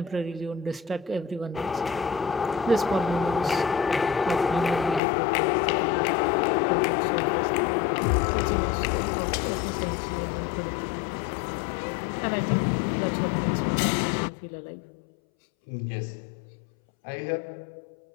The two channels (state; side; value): drops out; right; at 5.0 s